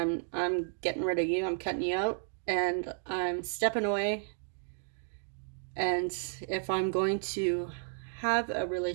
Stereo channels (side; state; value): left; silent; 56 dB below the other